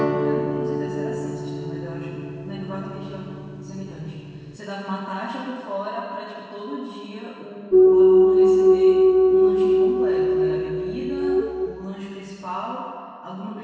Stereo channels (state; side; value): identical; both; correlation 1.00